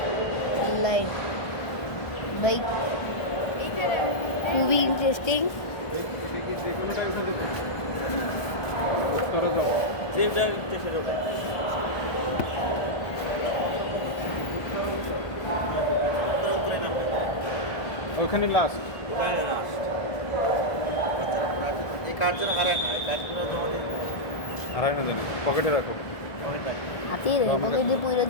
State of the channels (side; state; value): right; late; 1.4 ms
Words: লাইক ভাই খুবই ইন্টারেস্টিং। উত্তরা যাও। ওখানে লাস্ট। এই কার্ড যেন হারায় না, এই কার্ডগুলো জমা দিয়ে আড়াই না জানি, পকেটে রাখো। হাতিয়ে রে পকেটে পুইরা